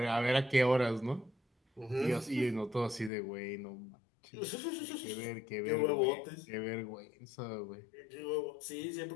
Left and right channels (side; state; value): right; drops out; at 3.1 s